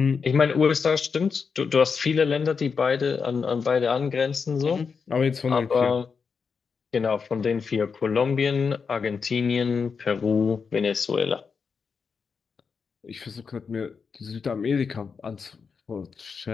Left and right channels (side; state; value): right; quieter; 5.6 dB